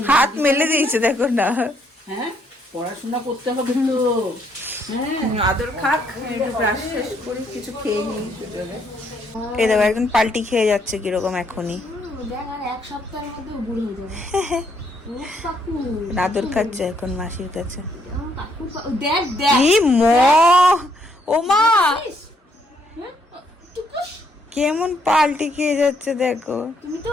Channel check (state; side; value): normal; both; correlation 0.71